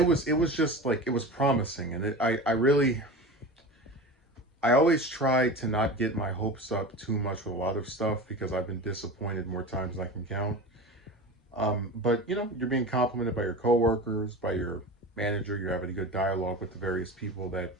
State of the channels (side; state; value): both; normal; correlation 0.31